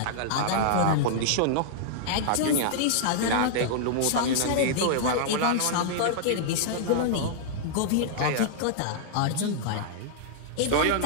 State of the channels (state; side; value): different; both; correlation -0.02